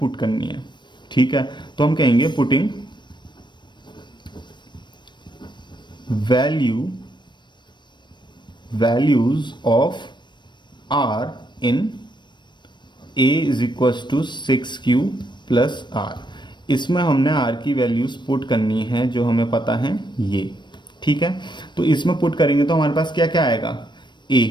करनी है। ठीक है, तो हम कहेंगे putting values of r in a is equal to 6q plus r। इसमें हमने r की वैल्यूज पुट करनी है जो हमें पता है ये। ठीक है, तो इसमें पुट करेंगे तो हमारे पास क्या क्या आएगा, a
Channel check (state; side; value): late; right; 0.22 ms